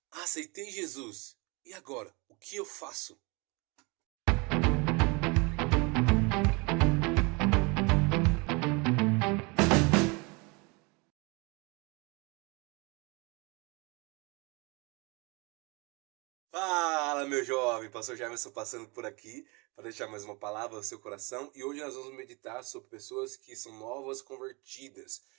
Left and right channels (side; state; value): left; quieter; 28.6 dB